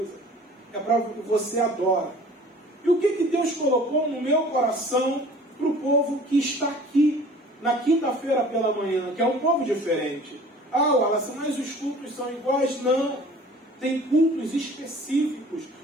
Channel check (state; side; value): normal; both; correlation 0.47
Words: é para você adorar. E o que Deus colocou no meu coração para o povo que está aqui na quinta-feira pela manhã, que é um povo diferente? Ah, Wallace, mas os cultos são iguais? Não. Tem cultos específicos